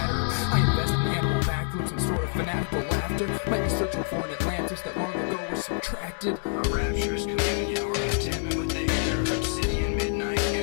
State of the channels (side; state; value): right; silent; digital silence